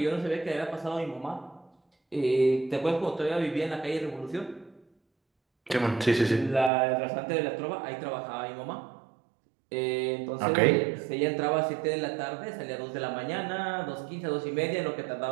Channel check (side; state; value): left; drops out; at 6.7 s